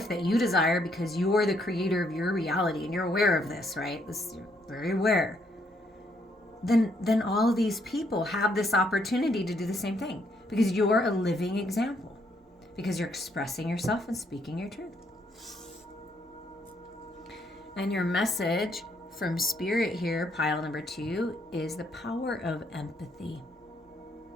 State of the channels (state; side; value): normal; both; correlation 0.72